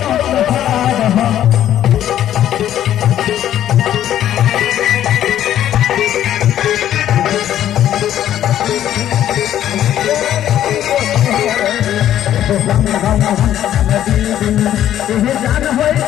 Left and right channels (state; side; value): quieter; right; 11.5 dB